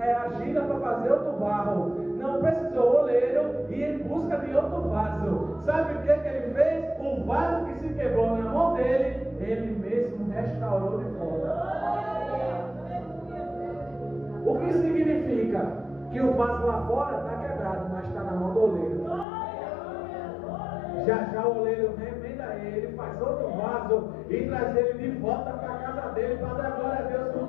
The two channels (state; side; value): drops out; right; at 19.2 s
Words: argila para fazer outro barro. Não precisou o oleiro ir em busca de outro vaso. Sabe o que ele fez? O vaso que se quebrou na mão dele, ele mesmo restaurou de volta. O que significa? Que o vaso lá fora está quebrado, mas está na mão do oleiro. Já o oleiro remenda ele, faz outro vaso e traz ele de volta para a casa dele, para dar glória a Deus